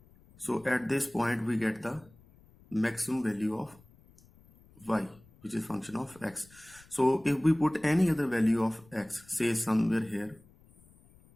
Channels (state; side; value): noise; left; rumble, 27 dB below the sound